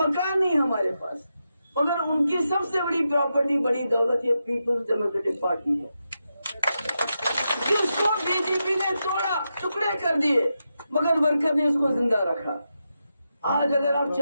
नहीं हमारे पास, मगर उनकी सबसे बड़ी प्रॉपर्टी, बड़ी दौलत ये पीपल्स डेमोक्रेटिक पार्टी है, जिसको बीजेपी ने तोड़ा, टुकड़े कर दिए, मगर वर्कर ने उसको जिंदा रखा। आज अगर आप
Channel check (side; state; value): both; inverted; correlation -0.87